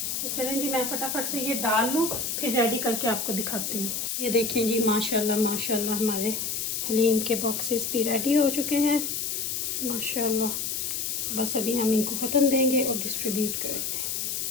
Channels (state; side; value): noise; left; hiss, 2 dB below the sound